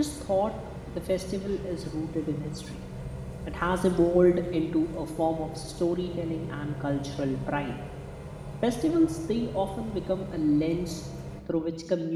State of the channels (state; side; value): identical; both; correlation 1.00